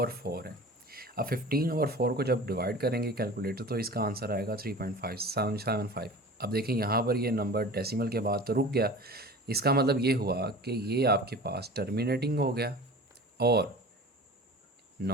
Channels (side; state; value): both; normal; correlation 0.38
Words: है। अब 15/4 को जब डिवाइड करेंगे कैलकुलेटर तो इसका आंसर आएगा 3.575। अब देखें, यहाँ पर ये नंबर डेसिमल के बाद तो रुक गया, इसका मतलब ये हुआ कि ये आपके पास टर्मिनेटिंग हो गया और